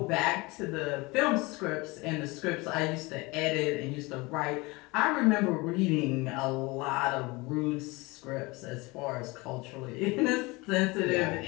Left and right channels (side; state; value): right; quieter; 24.1 dB